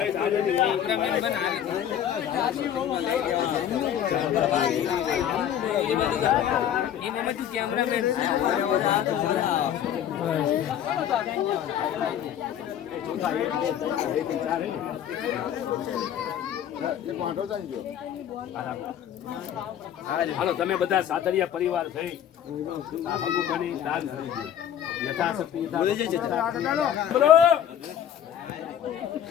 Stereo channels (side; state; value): right; quieter; 10.0 dB